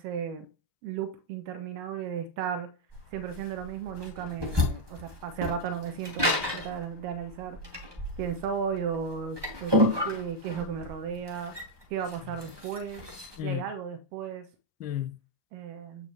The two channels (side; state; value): left; late; 1.2 ms